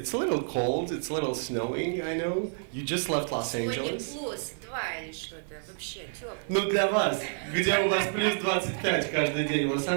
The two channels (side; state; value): left; silent; 58 dB below the other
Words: a little cold, it's a little snowing, I know. You just left Los Angeles. Сегодня плюс 2 или что-то, вообще тепло. Ну для вас, где у вас плюс 25 каждый день в